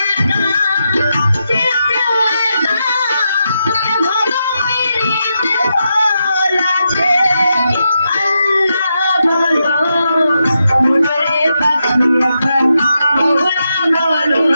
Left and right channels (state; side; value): inverted; both; correlation -0.84